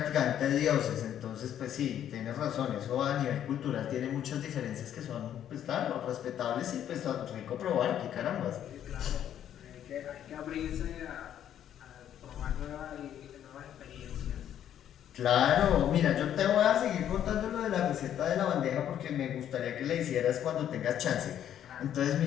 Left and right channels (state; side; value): quieter; right; 10.4 dB